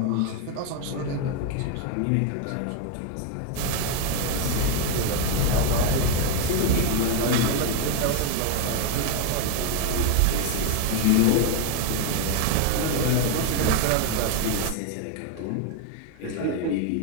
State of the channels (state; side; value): different; both; correlation 0.01